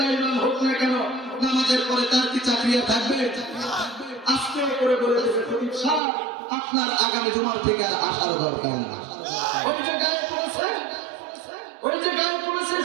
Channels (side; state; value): left; drops out; at 6.0 s